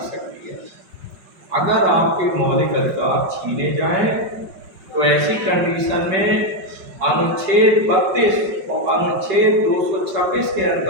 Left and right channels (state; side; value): late; left; 5.2 ms